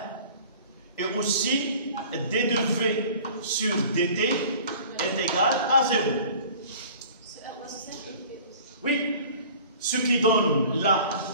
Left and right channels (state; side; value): inverted; both; correlation -0.46